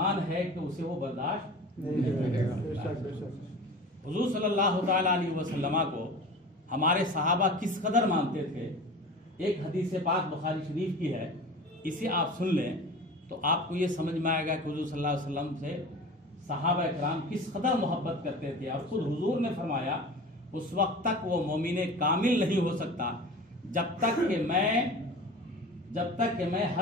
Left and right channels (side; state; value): both; normal; correlation 0.36